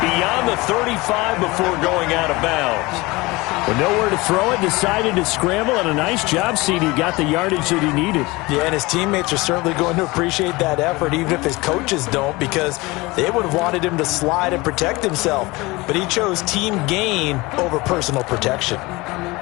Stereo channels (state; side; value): quieter; right; 22.6 dB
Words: the 35 before going out of bounds. With nowhere to throw it, decided to scramble, and a nice job, CD. Got the yardage that he needed. Yeah, and his teammates are certainly going to appreciate that effort, even if his coaches don't, because they would have wanted him to slide and protect himself. But he chose team gain over personal protection.